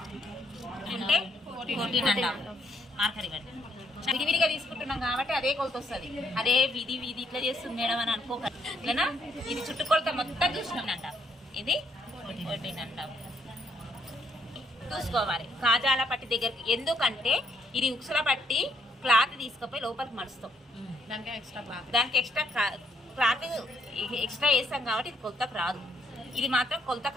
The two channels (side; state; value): both; normal; correlation 0.71